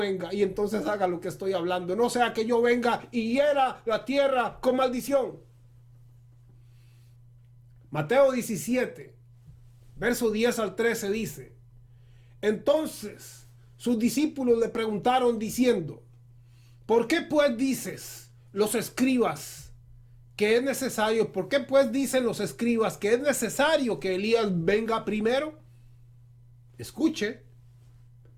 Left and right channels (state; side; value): identical; both; correlation 1.00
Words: y entonces haga lo que estoy hablando. No sea que yo venga y hiera la tierra con maldición. Mateo 17, verso 10 al 13 dice, entonces sus discípulos le preguntaron diciendo, ¿por qué pues dices los escribas que es necesario? ¿Por qué pues dicen los escribas que es necesario que Elías venga primero? Escuche.